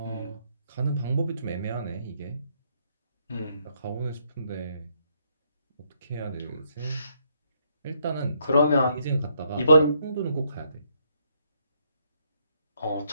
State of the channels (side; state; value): both; inverted; correlation -0.73